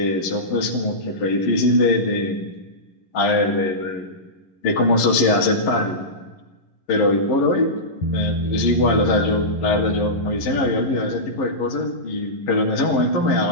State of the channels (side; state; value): right; late; 11 ms